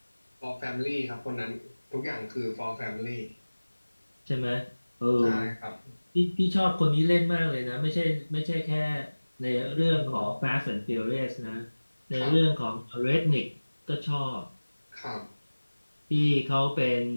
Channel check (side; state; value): both; inverted; correlation -1.00